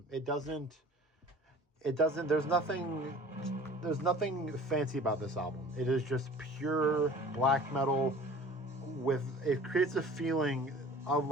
there's nothing fancy about this album. It is just pure black metal it creates a feeling of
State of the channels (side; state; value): both; normal; correlation 0.46